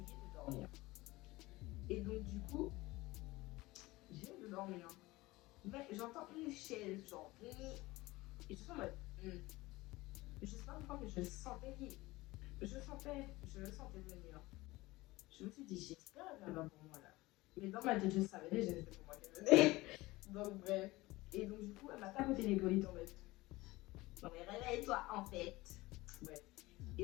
de dormir. Et donc, du coup, j'ai de dormir. Mais j'entends une chaise, genre, et je suis en mode, je sais pas pourquoi, mais je sentais je le sentais venir. Je me suis dit, j'espère qu'elle va pour moi là. Mais dans ma tête, je savais déjà que c'était pour moi qu'elle venait. Donc, bref. Et donc, du coup, elle m'a tapoté l'épaule et tombée. Non, mais réveille-toi en fait. Bref.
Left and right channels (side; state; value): right; quieter; 20.0 dB